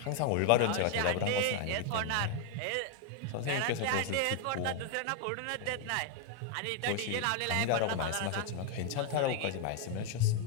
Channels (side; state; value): both; different; correlation 0.00